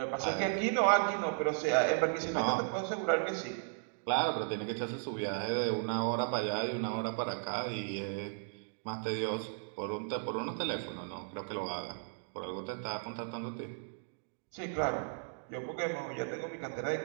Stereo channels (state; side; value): silent; left; digital silence